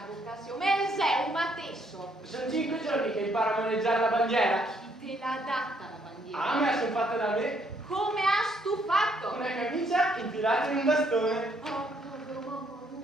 vocazione, ma sei un matesso. Sono 5 giorni che imparo a maneggiare la bandiera. Chi te l'ha data la bandiera? Ah, me la sono fatta da me. Come has tu fatto? Una camicia infilata in un bastone. Oh, povero mamma.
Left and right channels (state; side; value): normal; both; correlation 0.69